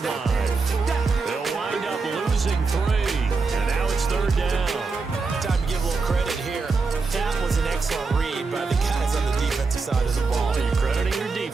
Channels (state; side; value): quieter; left; 4.3 dB